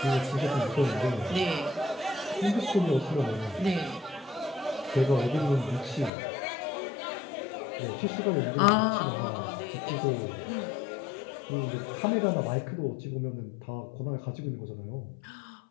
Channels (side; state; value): right; drops out; at 6.1 s